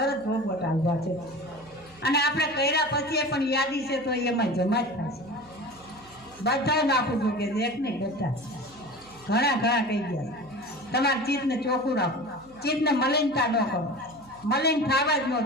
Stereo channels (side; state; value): right; noise; hum, 26 dB below the sound